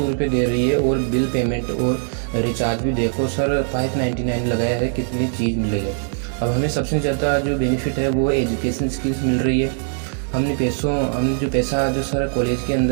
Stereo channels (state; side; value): silent; left; digital silence